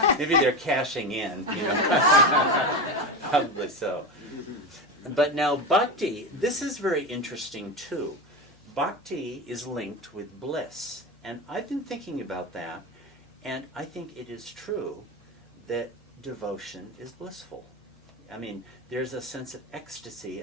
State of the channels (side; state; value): both; normal; correlation 0.20